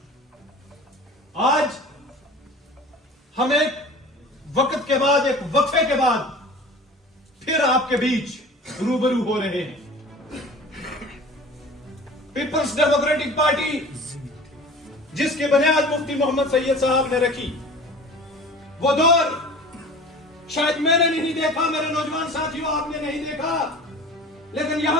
आज हम एक वक्त के बाद, एक वक्फे के बाद फिर आपके बीच रूबरू हो रहे हैं। पीपल्स डेमोक्रेटिक पार्टी जिसकी बुनियाद मुफ्ती मोहम्मद सैयद साहब ने रखी, वो दौर शायद मैंने नहीं देखा, मेरे नौजवान साथियों आपने नहीं देखा, लेकिन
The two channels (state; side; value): normal; both; correlation 0.40